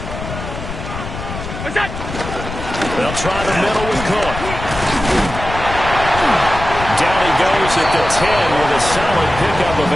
What's that? They'll try the middle with Cook. Down he goes at the 10 with a solid pickup of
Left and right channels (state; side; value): noise; left; rumble, 9 dB below the sound